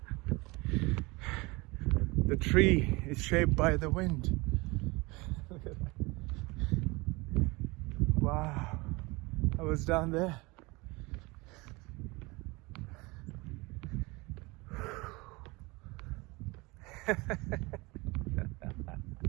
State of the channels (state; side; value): quieter; left; 24.4 dB